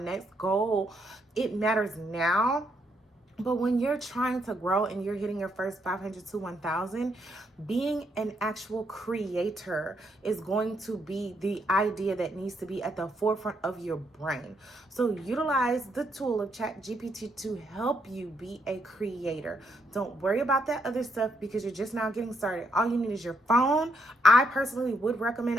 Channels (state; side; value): normal; both; correlation 0.76